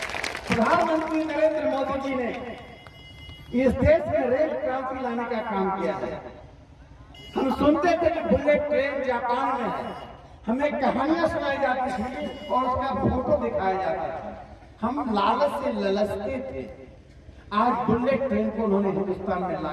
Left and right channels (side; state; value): both; identical; correlation 1.00